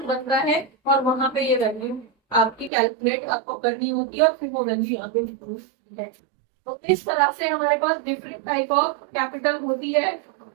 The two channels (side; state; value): left; drops out; at 2.7 s